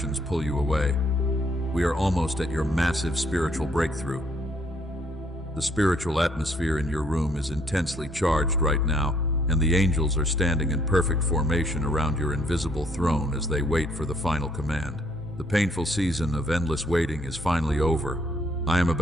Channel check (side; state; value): both; normal; correlation 0.67